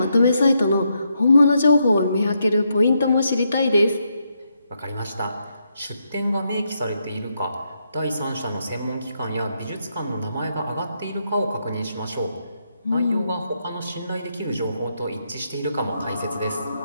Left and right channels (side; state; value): both; inverted; correlation -0.80